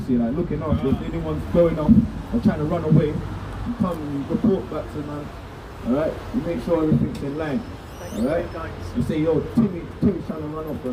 like looking after. If anyone's going off or trying to run away, you come and you report back to man. Alright? You make sure everything's in line. Alright? You say, yo, Timmy's trying to run off. You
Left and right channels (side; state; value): both; identical; correlation 1.00